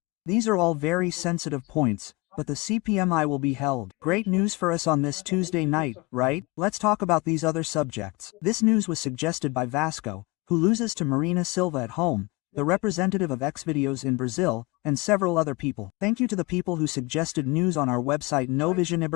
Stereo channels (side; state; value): right; quieter; 24.6 dB